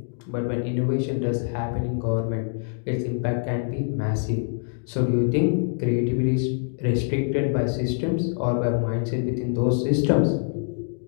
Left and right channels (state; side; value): silent; right; digital silence